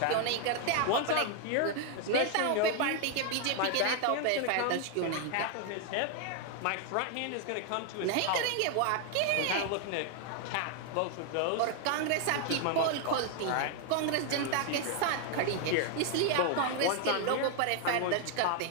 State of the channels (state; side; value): different; both; correlation 0.00